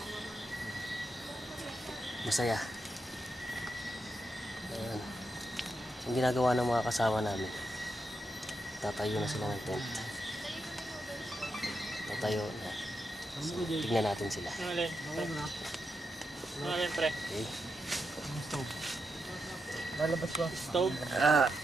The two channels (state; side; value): normal; both; correlation 0.85